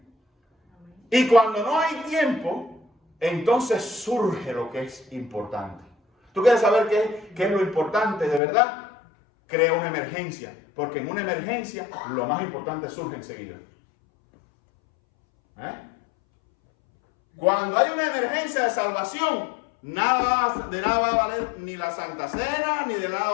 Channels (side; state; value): right; drops out; at 8.4 s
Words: Y cuando no hay tiempo, entonces surge lo que es importante. ¿Tú quieres saber qué es lo importante de verdad? Crea una emergencia. Porque en una emergencia lo más importante surge enseguida. Cuando hay una emergencia de salvación, de nada va a valer ni la Santa Cena, ni de nada